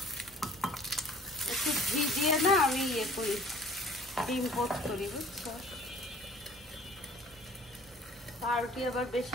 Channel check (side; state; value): right; noise; rumble, 27 dB below the sound